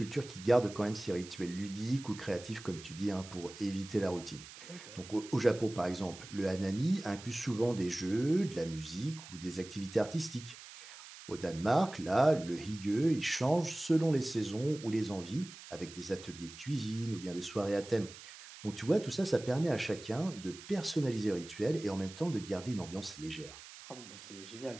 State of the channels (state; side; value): noise; right; hiss, 16 dB below the sound